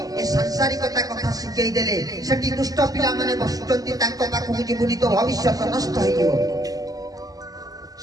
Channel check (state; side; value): late; left; 0.17 ms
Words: ए सांसारिकता कथा सिखै देले सेठी दुष्ट पिला माने बसुचंती तांको पाखु जीवुनी तो भविष्य नष्ट होई जीवो